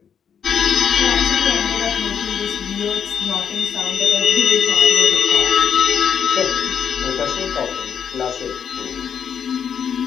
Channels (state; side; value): quieter; right; 7.7 dB